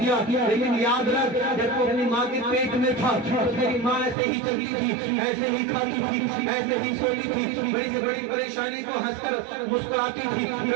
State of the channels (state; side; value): drops out; left; at 4.2 s